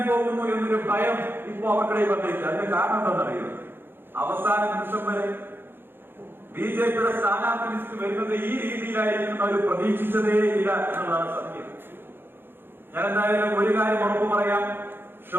പോകുന്നു എന്നൊരു ഭയം ഇപ്പോ അവർക്കിടയിൽ വന്നിരിക്കുക. അതിന്റെ കാരണം എന്താണെന്നറിയുന്നത്, അവസാന നിമിഷം വരെ BJPയുടെ സ്ഥാനാർത്ഥി ലിസ്റ്റ് വരുന്നത് ഈ രീതിയിലായിരിക്കും അവർ പ്രതീക്ഷിച്ചതേ ഇല്ല എന്നുള്ളതാണ് സത്യം. ഞാൻ എന്തായാലും ഒരു കാര്യം ഉറപ്പു പറയാം,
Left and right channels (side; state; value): left; late; 0.10 ms